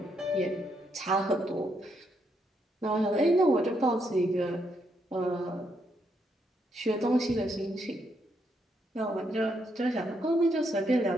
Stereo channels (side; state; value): both; normal; correlation 0.77